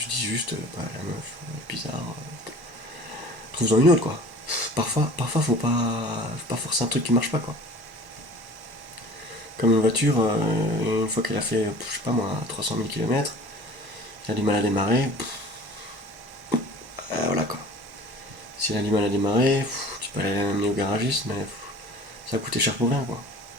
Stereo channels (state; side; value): late; left; 1.1 ms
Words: dis juste, bah, la meuf, bizarre. Trouve-en une autre, quoi. Parfois faut pas forcer un truc qui marche pas, quoi. Comme une voiture, une fois qu'elle a fait, je sais pas moi, 300 000 km, elle a du mal à démarrer. Voilà, quoi. Si elle a du mal à démarrer, tu peux aller l'amener au garagiste, mais ça va coûter cher pour rien, quoi.